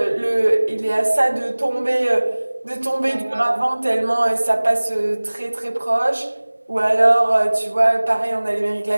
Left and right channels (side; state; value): both; inverted; correlation -1.00